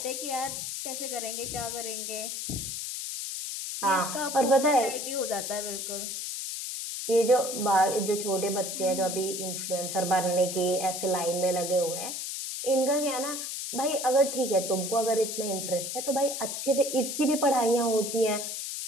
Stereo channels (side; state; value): left; noise; hiss, 5 dB below the sound